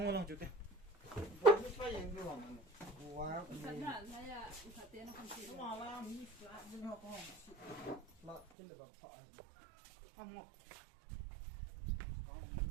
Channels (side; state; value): left; drops out; at 8.5 s